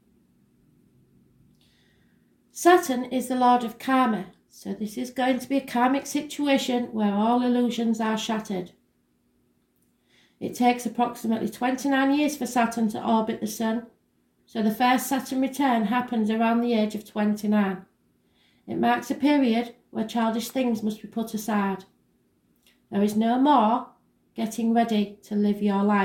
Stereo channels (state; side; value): identical; both; correlation 1.00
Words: Saturn is the Lord of Karma, so this is going to be a karmic situation where all illusions are shattered. It takes approximately 29 years for Saturn to orbit the Sun, so the first Saturn return happens around the age of 29. It marks a period where childish things must be put aside. There is no more getting ready to live your